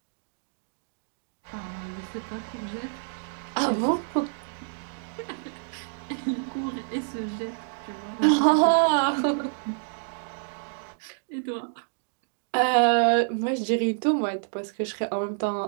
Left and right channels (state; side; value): silent; left; digital silence